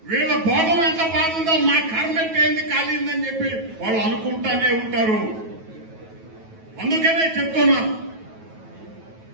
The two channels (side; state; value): left; late; 9.2 ms